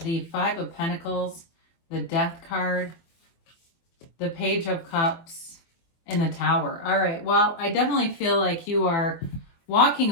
the Five of Pentacles, the Death card, the Page of Cups, and the Tower. All right, well, I definitely feel like you are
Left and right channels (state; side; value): late; right; 24 ms